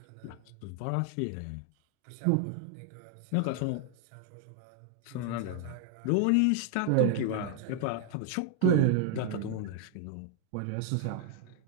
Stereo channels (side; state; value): both; different; correlation 0.00